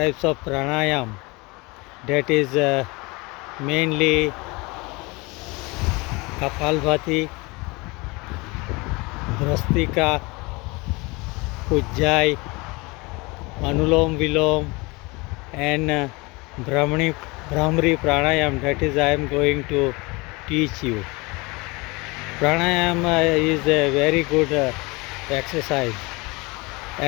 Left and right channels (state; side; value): quieter; right; 25.5 dB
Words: pranayam. That is mainly Kapalbhati, Bhrastika, Ujjayi, Anulom Vilom, and Brahmari pranayam. That is I am going to teach you. Pranayama is a very good exercise,